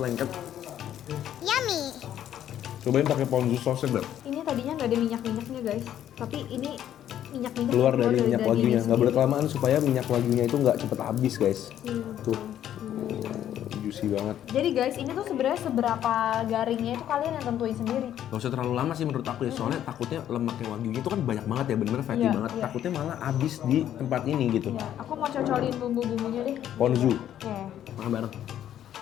Yummy. Cobain pakai ponzu sausnya, Beb. Ini tadinya nggak ada minyak-minyaknya guys, tapi ini minyak-minyak Keluar dari minyak dagingnya wagyunya. Nggak sendiri. boleh kelamaan supaya minyak wagyunya itu nggak cepet habis guys. Iya. Tuh, juicy banget. Jadi guys, ini tuh sebenarnya seberapa garingnya itu kalian yang tentuin sendiri. Gak usah terlalu lama sih menurut aku ya, soalnya takutnya lemaknya wagyunya itu kan banyak banget ya, bener-bener fatty Iya, banget. iya. Takutnya malah habis di tempat ini gitu. Ya, aku mau cocolin bumbu-bumbunya deh. Ponzu, Oke. makan bareng.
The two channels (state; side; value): quieter; right; 10.9 dB